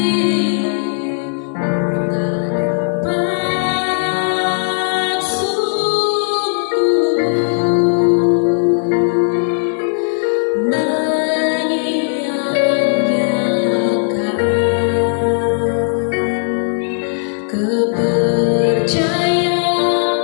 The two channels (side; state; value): right; silent; digital silence